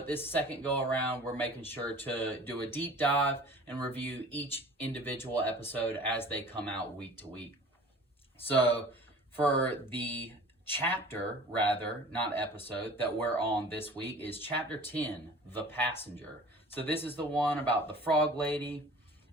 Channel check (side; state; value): both; normal; correlation 0.44